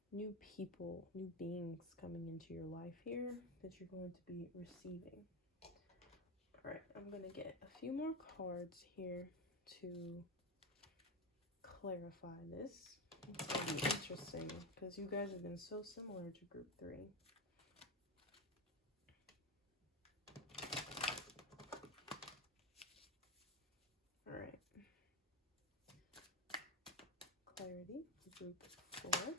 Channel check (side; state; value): both; normal; correlation 0.15